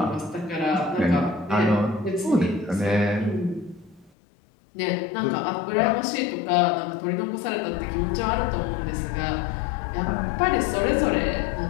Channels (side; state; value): right; drops out; at 4.1 s